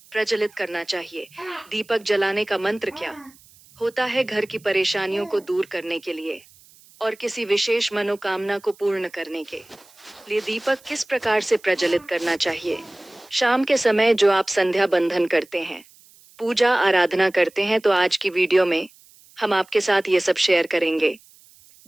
प्रज्वलित करना चाहिए, दीपक जलाने का मंत्र क्या होता है घर की परेशानियों को दूर करने के लिए और किसी विशेष मनोकामना को पूर्ण करने के लिए दीपक किस प्रकार से प्रज्वलित करना चाहिए। शाम के समय जो आप संध्या बंधन करते हैं, पूजा आराधना करते हैं, तो आज की वीडियो में हम आपके साथ ये सब शेयर करेंगे।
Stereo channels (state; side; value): noise; right; hiss, 27 dB below the sound